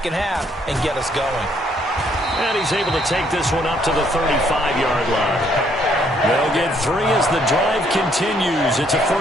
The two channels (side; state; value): both; normal; correlation 0.68